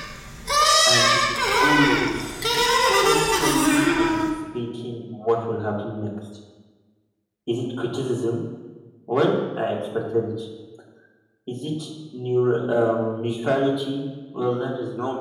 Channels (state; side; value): identical; both; correlation 1.00